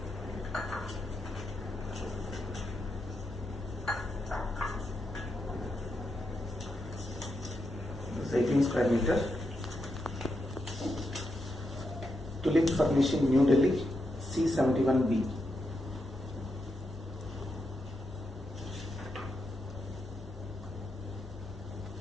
This is 18 square meter. Tulip Furnishing, New Delhi, C71B.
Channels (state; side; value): normal; both; correlation 0.84